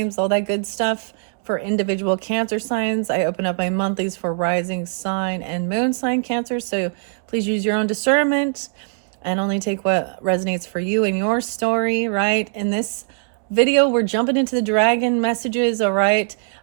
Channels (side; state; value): left; silent; 65 dB below the other